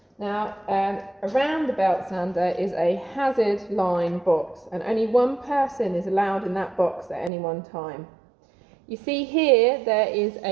Now, around the belt sander is a hazard line box, and only one person is allowed in that box at any one time. You see here, there is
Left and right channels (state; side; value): drops out; left; at 7.3 s